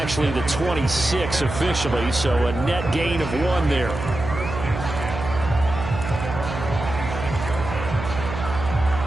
the 26 officially, so a net gain of 1 there.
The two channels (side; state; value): right; noise; hum, 7 dB below the sound